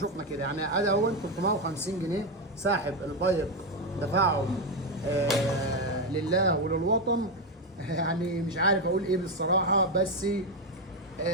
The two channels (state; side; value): normal; both; correlation 0.08